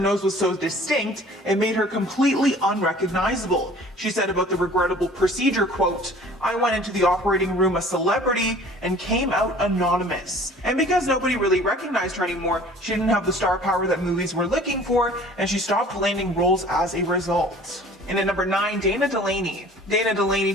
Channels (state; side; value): normal; both; correlation 0.48